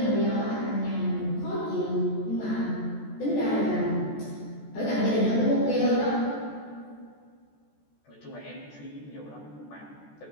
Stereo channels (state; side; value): late; right; 14 ms